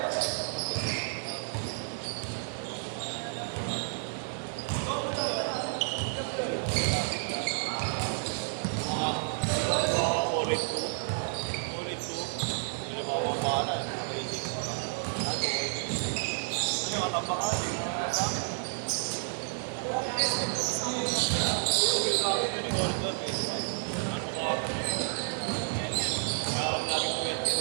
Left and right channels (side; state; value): left; silent; 57 dB below the other